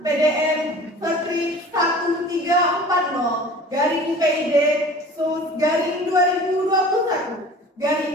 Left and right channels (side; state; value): both; normal; correlation 0.43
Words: PDN Strip 1340 garing PID sus garing 2021